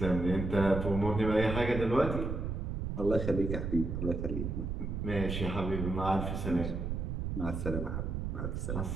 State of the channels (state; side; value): noise; right; rumble, 3 dB below the sound